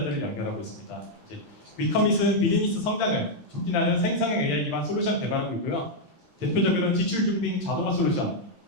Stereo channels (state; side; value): normal; both; correlation -0.02